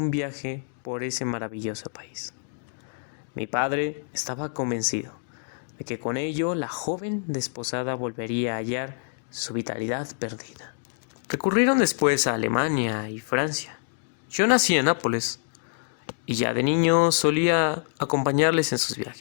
viaje por ese maravilloso país. Mi padre estaba convencido de que con ello la joven desposada volvería a hallar su vitalidad perdida. Recurrieron después a Alemania y Francia. Yo nací en Nápoles y ya de niño solía acompañarles en sus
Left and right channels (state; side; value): silent; right; digital silence